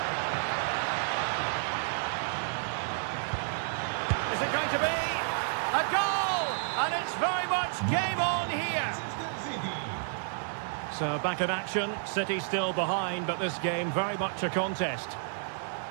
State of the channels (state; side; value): silent; left; 57 dB below the other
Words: Is it going to be a goal? And it's very much game on here. So back in action, City still behind, but this game very much a contest.